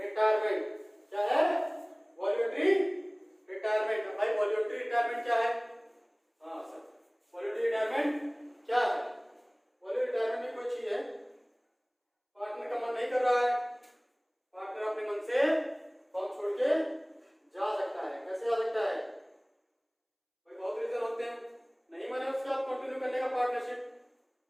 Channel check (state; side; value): identical; both; correlation 1.00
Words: क्या है, वॉलंटरी रिटायरमेंट। भाई वॉलंटरी रिटायरमेंट क्या है, हाँ सर, वॉलंटरी रिटायरमेंट क्या है, वॉलंटरी रिटायरमेंट भी कोई चीज है, पार्टनर का मन नहीं कर रहा है, पार्टनर अपने मन से फर्म छोड़ के जा सकता है। कैसे जा सकता है, भाई बहुत रीजन होते हैं, नहीं माने उसके आप कंटिन्यू करने का, पार्टनरशिप